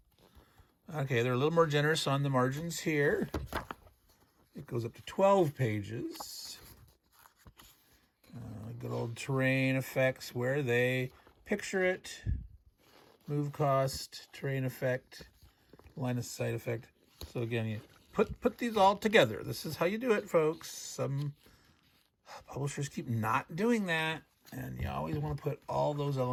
Okay, they're a little more generous on the margins here. It goes up to 12 pages. Good old terrain effects where they picture it. Move cost, terrain effect, line of sight effect. So again, you put these all together. This is how you do it, folks. Some publishers keep not doing that, and you always want to put all those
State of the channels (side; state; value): both; identical; correlation 1.00